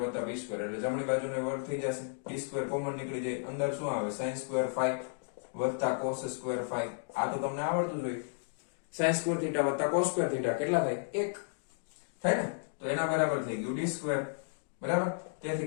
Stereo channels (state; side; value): silent; right; digital silence